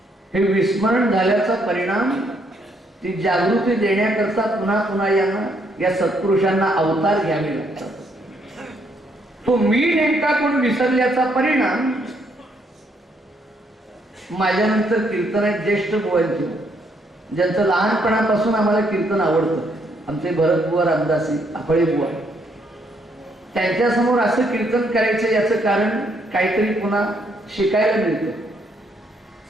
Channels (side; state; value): both; normal; correlation 0.72